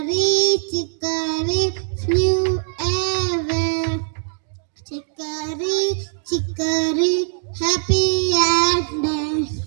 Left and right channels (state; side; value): silent; left; digital silence